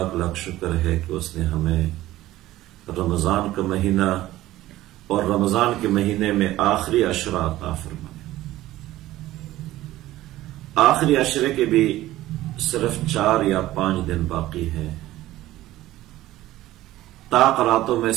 لاکھ شکر ہے کہ اس نے ہمیں رمضان کا مہینہ اور رمضان کے مہینے میں آخری عشرہ عطا فرمایا۔ آخری عشرے کے بھی صرف 4 یا 5 دن باقی ہیں۔ طاق راتوں میں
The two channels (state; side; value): quieter; left; 15.7 dB